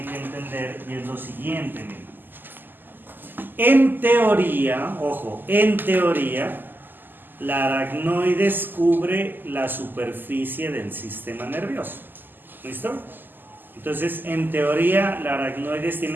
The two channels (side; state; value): left; late; 0.091 ms